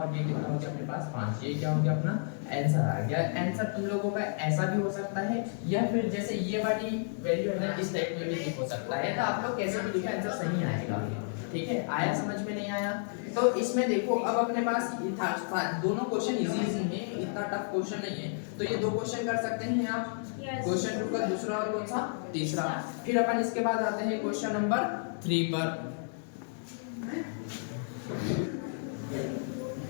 ये कितना हो गया अपने पास 5, ये क्या हो गया अपना आंसर आ गया। आंसर तुम लोगों का ऐसा भी हो सकता है, या फिर जैसे ये वाली वैल्यू है ना इस टाइप में भी हो सकता है, तो आप लोग कैसे भी लिखा आंसर सही आएगा, ठीक है। आया समझ में नहीं आया, तो इसमें देखो अब अपने पास दोनों क्वेश्चन इजी है, इतना टफ क्वेश्चन नहीं है, तो ये 2 क्वेश्चन कर सकते हैं आप, क्वेश्चन 2 का दूसरा और कौन सा तीसरा। फिर अपन इसके बाद आते हैं क्वेश्चन नंबर 3 पर।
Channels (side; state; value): right; silent; digital silence